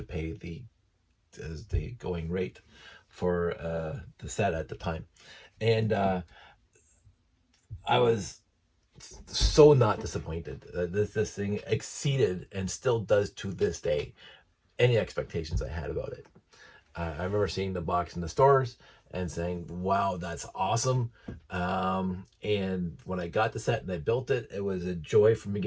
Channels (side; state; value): both; identical; correlation 1.00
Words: pay the going rate for the set at the time. And I was so not disappointed. This thing exceeded and still does to this day any expectations I had about it. I remember seeing the box in the stores and saying, wow, that's awesome. And when I got the set and I built it, it was a joy from